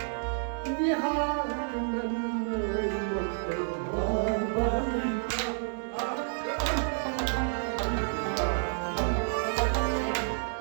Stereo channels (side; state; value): left; silent; 58 dB below the other